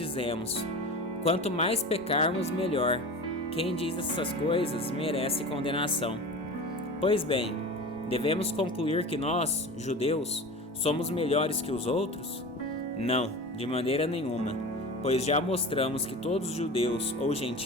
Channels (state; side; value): normal; both; correlation 0.32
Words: quanto mais pecarmos, melhor. Quem diz essas coisas merece condenação. Pois bem, devemos concluir que nós, judeus, somos melhores que os outros? Não, de maneira nenhuma, pois já mostramos que todos os judeus ou